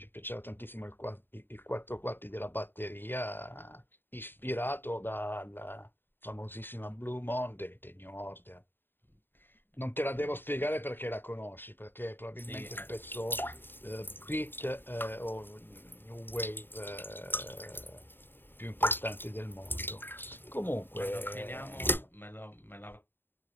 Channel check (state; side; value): late; right; 0.098 ms